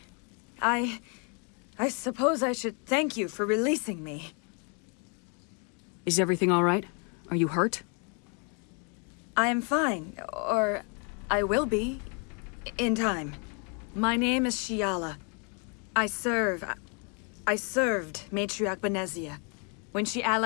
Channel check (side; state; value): right; quieter; 36.9 dB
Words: I suppose I should thank you for releasing me. Is everything all right? Are you hurt? I am fine, or I will be, in time. My name is Shiala. I served Matriarch Benezia. When she